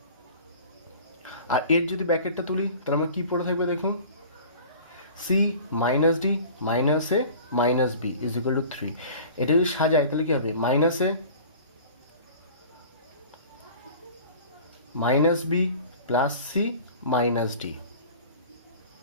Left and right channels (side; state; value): both; inverted; correlation -0.43